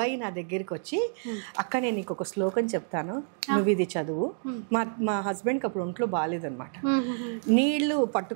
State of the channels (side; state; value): left; silent; digital silence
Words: నా దగ్గరికి వచ్చి, అక్క నేను నీకు ఒక శ్లోకం చెప్తాను, నువ్వు ఇది చదువు. మా హస్బెండ్కి అప్పుడు ఒంట్లో బాగాలేదనమాట. నీళ్లు